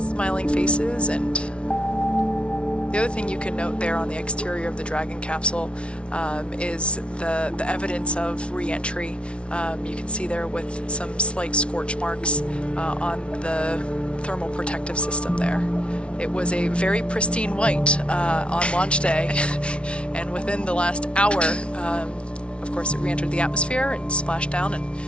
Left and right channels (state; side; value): late; right; 0.059 ms